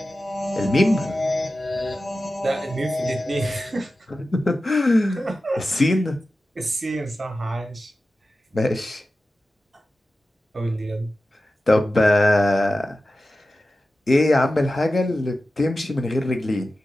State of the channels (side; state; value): both; normal; correlation 0.94